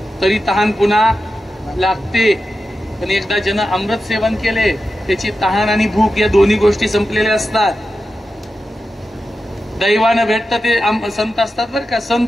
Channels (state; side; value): normal; both; correlation 0.91